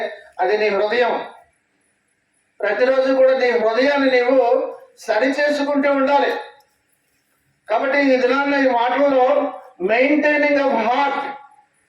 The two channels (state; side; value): identical; both; correlation 1.00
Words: అది నీ హృదయం. ప్రతిరోజు కూడా నీ హృదయాన్ని నీవు సరి చేసుకుంటూ ఉండాలి. కాబట్టి ఈ దినాన్న ఈ మాటలలో maintaining of heart